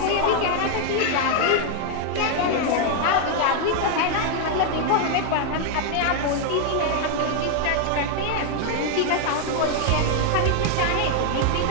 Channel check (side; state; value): both; different; correlation 0.00